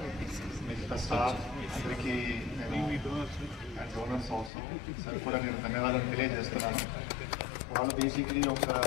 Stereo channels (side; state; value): right; drops out; at 4.5 s